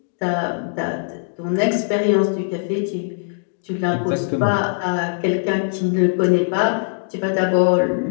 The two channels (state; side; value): silent; right; digital silence